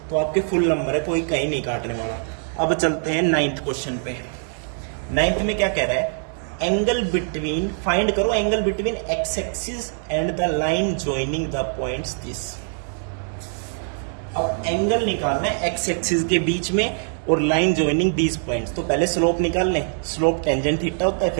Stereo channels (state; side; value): silent; left; 63 dB below the other